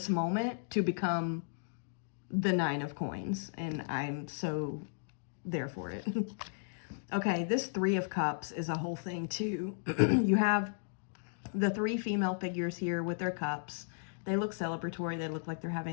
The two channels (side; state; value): right; silent; digital silence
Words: moment to become the Nine of Coins, and I'm so there for it. Okay, this Three of Cups is a whole thing too. You have the three female figures here with their cups. They look celebratory. They look like they're